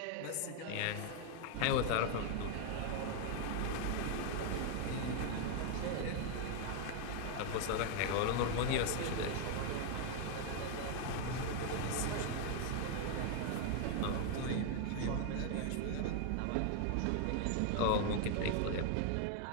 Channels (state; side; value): different; both; correlation 0.00